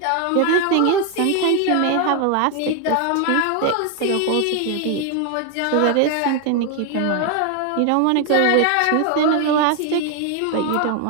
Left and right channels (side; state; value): both; different; correlation 0.01